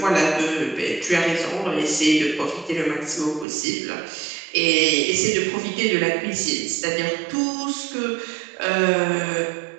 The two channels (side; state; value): left; drops out; at 3.5 s